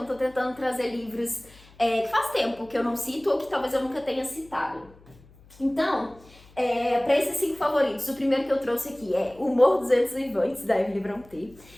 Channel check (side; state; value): left; noise; hum, 25 dB below the sound